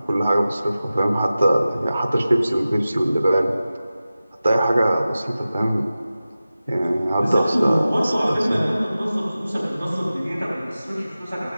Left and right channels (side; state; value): both; inverted; correlation -0.95